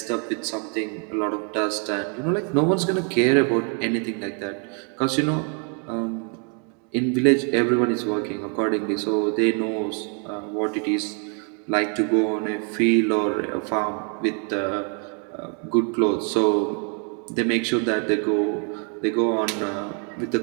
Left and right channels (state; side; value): quieter; left; 39.6 dB